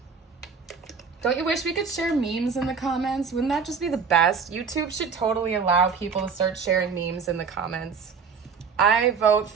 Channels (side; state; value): left; quieter; 5.7 dB